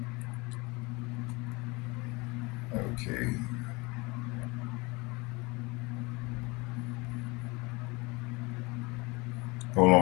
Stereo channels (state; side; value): quieter; right; 25.6 dB